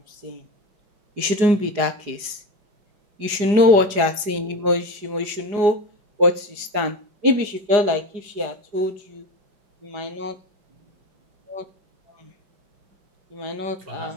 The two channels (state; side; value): late; left; 4.9 ms